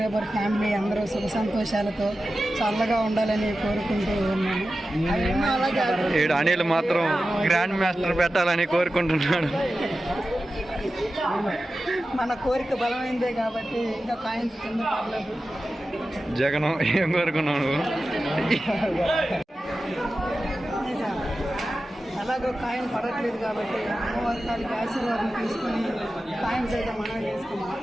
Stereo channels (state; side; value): normal; both; correlation 0.93